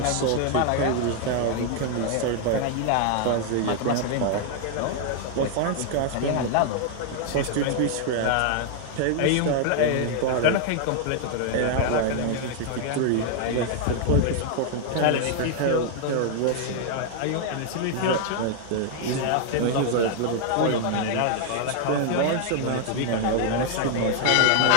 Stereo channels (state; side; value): different; both; correlation 0.00